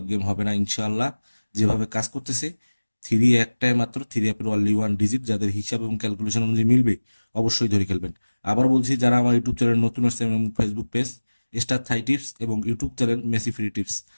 গেম হবে না ইনশাআল্লাহ। যেভাবে কাজ করতেছে থ্রি একটাই মাত্র, থ্রি অ্যাপের অনলি ওয়ান ডিজিট, যাদের হিসাব এবং ক্যালকুলেশন অনুযায়ী মিলবে অবশ্যই ধরে খেলবেন। আবার বলছি, যারা আমার ইউটিউব চ্যানেল নতুন আসছে এবং ফেসবুক পেজ স্টার থাই টিপস এবং YouTube channel Messi free tips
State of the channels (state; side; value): inverted; both; correlation -1.00